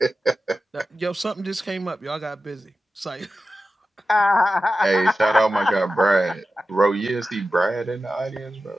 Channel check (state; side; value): normal; both; correlation 0.93